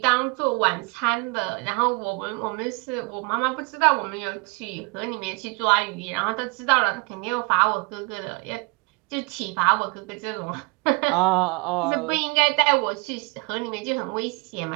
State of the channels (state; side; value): quieter; left; 29.7 dB